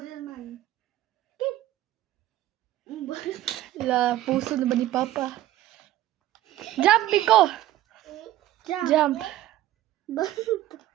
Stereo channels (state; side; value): quieter; left; 14.4 dB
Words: La, puso na ba ni Papa? Jump, Miko. Jump.